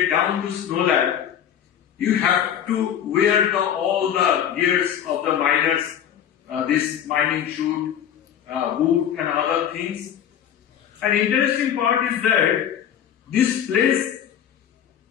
down to Snow Lab, you have to wear all the gears of the miners, this mining chute, boot and other things. An interesting part is that this place,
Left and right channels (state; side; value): quieter; right; 9.5 dB